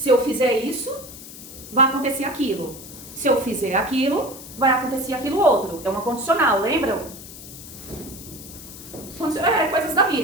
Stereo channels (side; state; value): left; noise; hiss, 15 dB below the sound